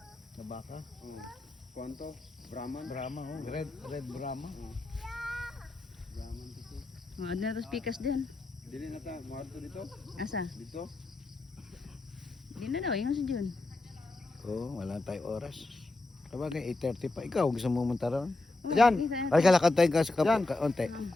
Na baka. Kwanto? Brahman? Brahma, oh. Red Brahma. Brahman dito. Mga na tos pikas din. Dili na ta, maadto dito. Asa? Dito. Di na daw, yung si Jun. Oo, wala tayong oras. Sabagay, 8:30 pa. Ikaw, gusto mo munta ron? Diyan. Ay, kalakad tayo ka sa Yan. kaunti.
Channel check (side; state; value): right; quieter; 3.1 dB